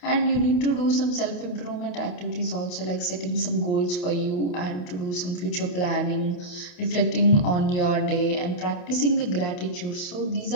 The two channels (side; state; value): right; late; 28 ms